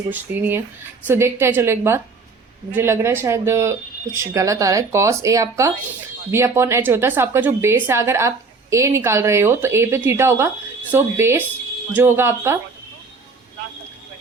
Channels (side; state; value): left; quieter; 4.3 dB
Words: कुछ दी नहीं है। सो देखते हैं, चलो एक बार, मुझे लग रहा है शायद कुछ गलत आ रहा है। कॉस ए आपका b अपॉन एच होता है। सो आपका जो बेस है, अगर आप a निकाल रहे हो तो a पे थीटा होगा। सो बेस जो होगा आपका